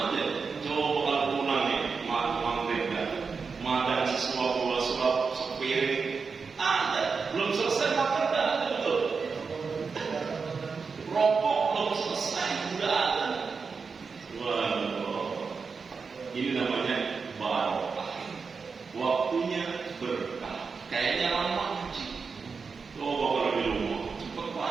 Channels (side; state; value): left; quieter; 5.1 dB